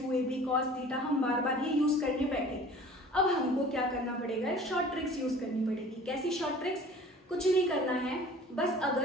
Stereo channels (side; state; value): both; normal; correlation 0.46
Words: cos theta, हम बार बार ये यूज करने बैठे। अब हमको क्या करना पड़ेगा, शॉर्ट ट्रिक्स यूज करनी पड़ेगी। कैसी शॉर्ट ट्रिक्स, कुछ नहीं करना है, बस